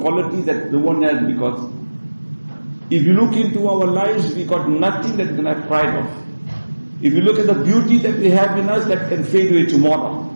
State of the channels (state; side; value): inverted; both; correlation -1.00